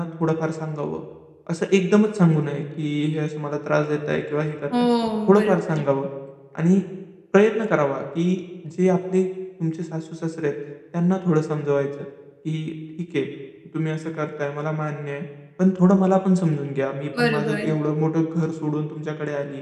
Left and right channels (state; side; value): identical; both; correlation 1.00